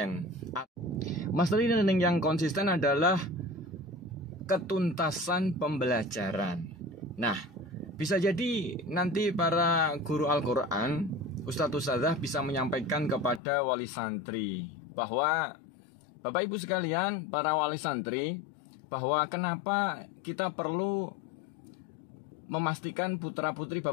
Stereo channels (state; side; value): drops out; right; at 13.4 s